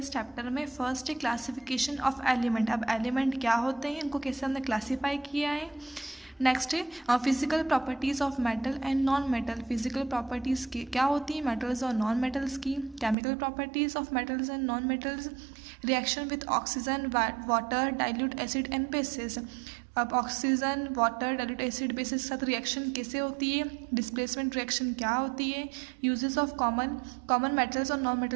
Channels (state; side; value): drops out; left; at 13.2 s